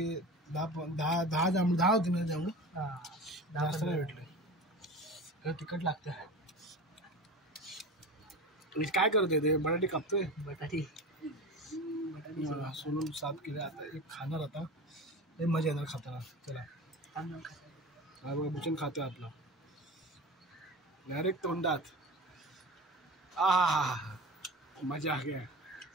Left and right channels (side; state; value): both; normal; correlation 0.32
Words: 10 जांभळं 10 होती ना जांभळं जास्त नाही भेटले तिखट लागतं काय करतोय ते बटाटी कापतोय बटाटी सोलून साफ केलं आता एक खाणार आता लय मजा येणार खाताना. चला तांदूळ खातो. हा बघा भूषण खातोय आपला डायरेक्ट तोंडात. आ मजा आ गया.